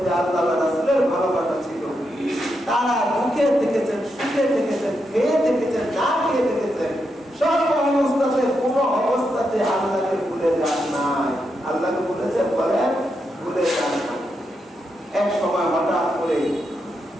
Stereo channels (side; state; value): both; normal; correlation 0.84